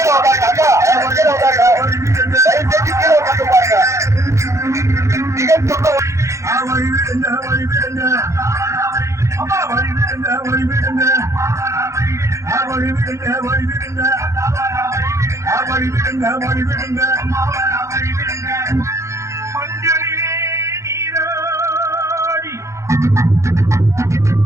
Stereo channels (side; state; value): left; late; 0.14 ms